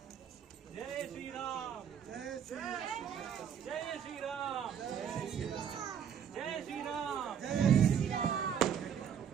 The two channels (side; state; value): left; quieter; 8.3 dB